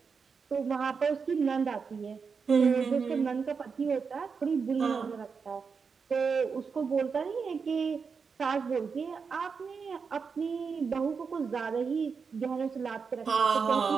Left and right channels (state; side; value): quieter; left; 5.5 dB